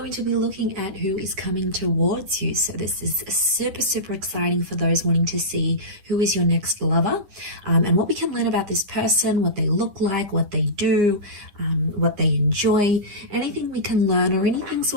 to be looking at who is coming towards you. So this is super exciting for those wanting to see who is your next lover, and what we can learn about this person, what they look like, what they do, what they enjoy, anything we can learn or anything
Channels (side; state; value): left; late; 10 ms